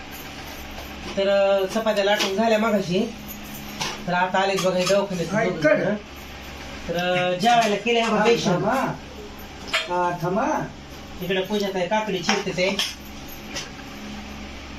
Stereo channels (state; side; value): identical; both; correlation 1.00